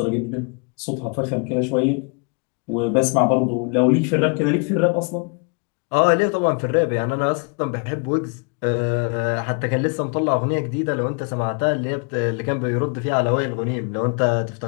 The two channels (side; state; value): right; quieter; 34.6 dB